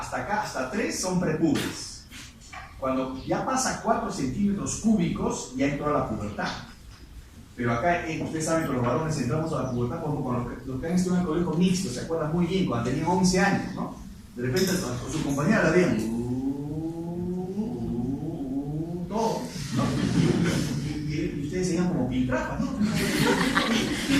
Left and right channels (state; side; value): identical; both; correlation 1.00